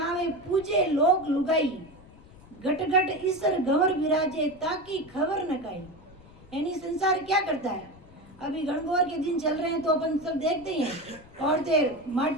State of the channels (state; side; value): noise; left; rumble, 23 dB below the sound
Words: पूजे लोग लुगाई, घट घट ईसर गवर विराजे ताकि खबर न काई। यानी संसार क्या करता है, अभी गणगौर के दिन चल रहे हैं तो अपन सब देखते हैं, औरतें